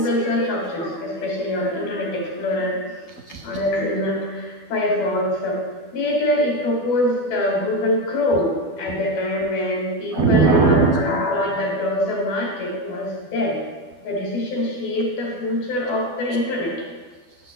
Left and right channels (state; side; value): late; right; 12 ms